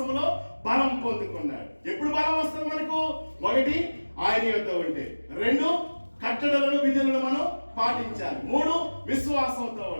బలం పొందుకున్నాడు. ఎప్పుడు బలం వస్తుంది మనకు? 1 ఆయన యొద్ద ఉంటే, 2 కట్టడలను విధులను మనం పాటించాలి, 3 విశ్వాసంతో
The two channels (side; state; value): both; inverted; correlation -1.00